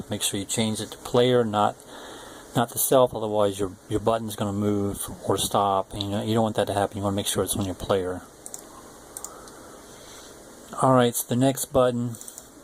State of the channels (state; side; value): identical; both; correlation 1.00